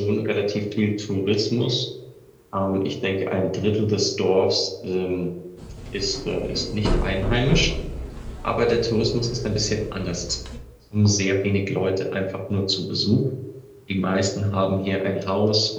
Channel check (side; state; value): both; identical; correlation 1.00